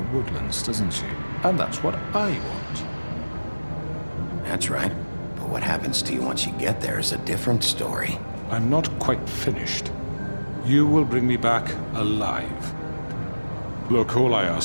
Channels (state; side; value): inverted; both; correlation -1.00